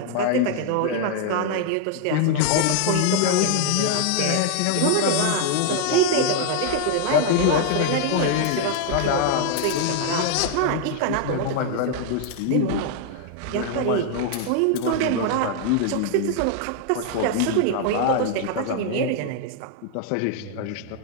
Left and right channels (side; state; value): both; different; correlation 0.00